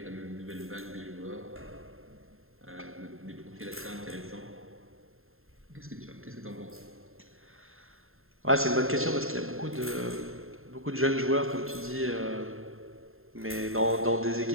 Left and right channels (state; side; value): late; left; 0.61 ms